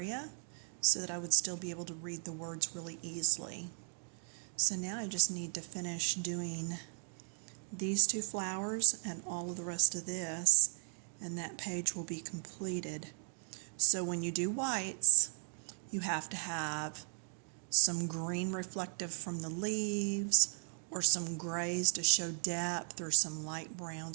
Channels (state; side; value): silent; left; 53 dB below the other